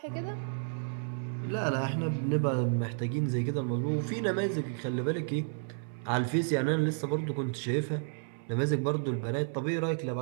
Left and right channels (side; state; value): left; silent; 57 dB below the other